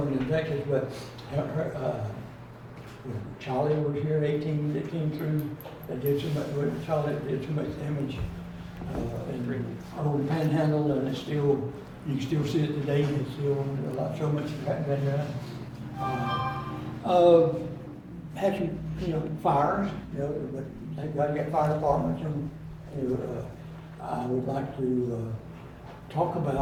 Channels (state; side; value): identical; both; correlation 1.00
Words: in Texas, but, Charlie was here, 18, that came through, that did so much, Charlie did so much damage. And old Panhandle, and it's still, you can still see it today, it's still so much has been done. Had some, you know, fires, you know, but they've got to get fire departments, and, you know, I would like to, talk